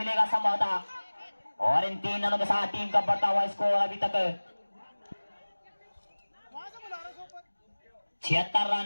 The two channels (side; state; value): both; inverted; correlation -1.00